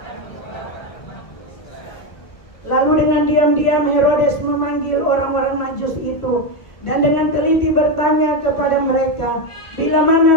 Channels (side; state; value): right; late; 1.5 ms